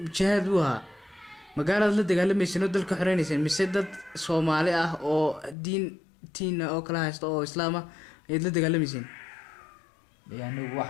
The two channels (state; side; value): drops out; right; at 5.6 s